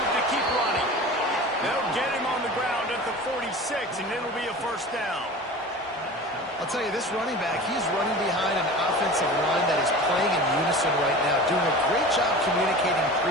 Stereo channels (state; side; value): normal; both; correlation 0.36